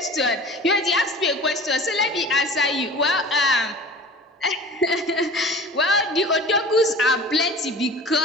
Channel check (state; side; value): normal; both; correlation 0.41